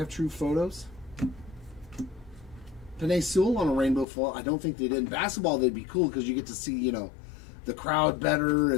True Photos? Panay Sewell on a rainbow foil. I don't think they did. In basketball, they'd be cool because you get to see, you know, the crowd better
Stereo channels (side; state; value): right; drops out; at 4.0 s